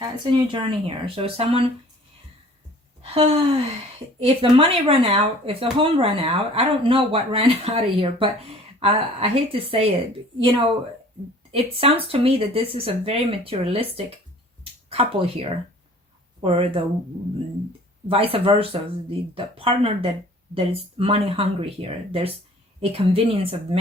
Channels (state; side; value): normal; both; correlation 0.50